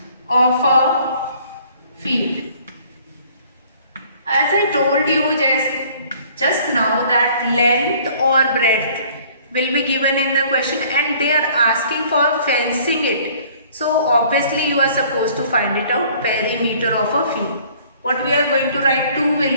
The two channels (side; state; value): both; inverted; correlation -0.56